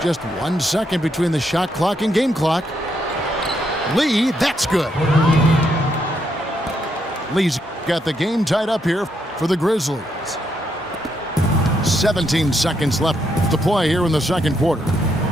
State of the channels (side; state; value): both; normal; correlation 0.77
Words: Just 1 second between the shot clock and game clock. Lee, that's good. Lee's got the game tied up here for the Grizzlies. 17 seconds left to play here in the second quarter.